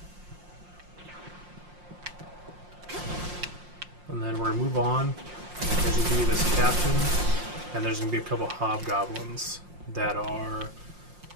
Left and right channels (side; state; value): left; late; 5.6 ms